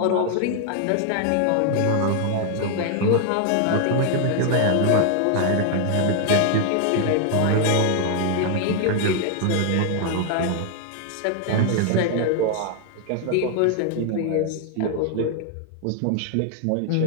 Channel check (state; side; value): different; both; correlation 0.00